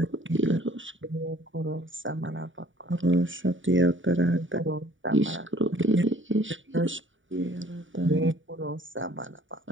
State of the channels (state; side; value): late; left; 0.56 ms